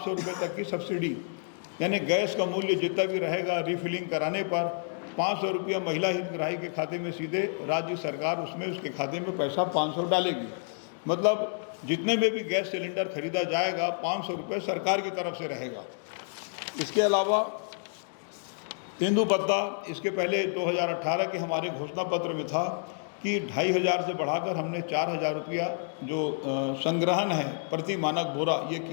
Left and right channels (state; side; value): silent; right; digital silence